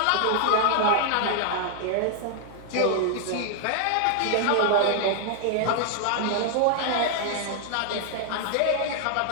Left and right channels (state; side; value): different; both; correlation 0.00